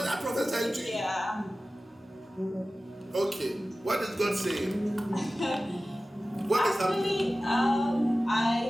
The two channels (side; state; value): both; normal; correlation 0.96